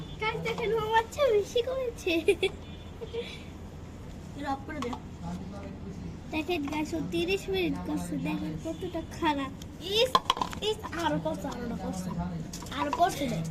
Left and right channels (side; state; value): both; identical; correlation 1.00